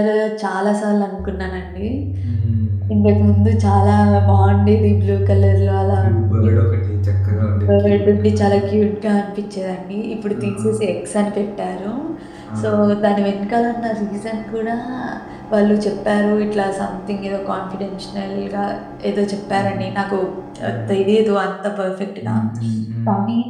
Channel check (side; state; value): both; identical; correlation 1.00